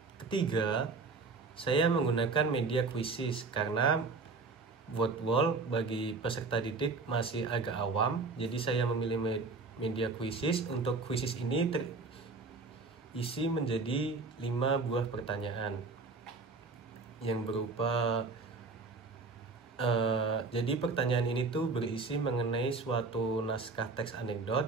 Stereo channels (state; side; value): quieter; left; 4.1 dB